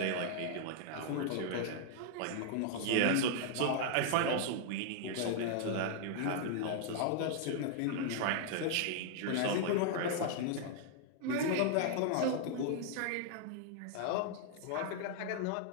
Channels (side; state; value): both; different; correlation 0.00